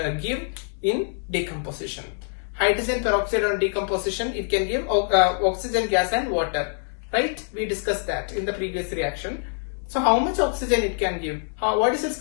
give in decomposition. Hydrogen peroxide on decomposition, it can give oxygen gas and water, right? We discussed that in the previous reaction. So how much oxygen it can give? What is its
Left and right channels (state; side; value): silent; right; digital silence